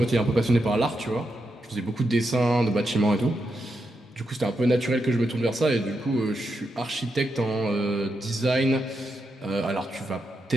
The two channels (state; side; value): normal; both; correlation 0.85